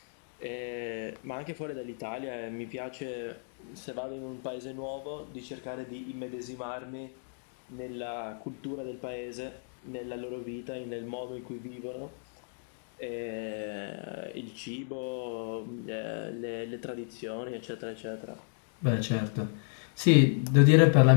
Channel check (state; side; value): silent; right; digital silence